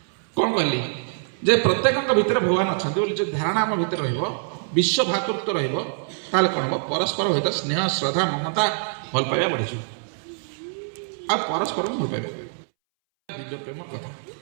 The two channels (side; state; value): left; silent; 62 dB below the other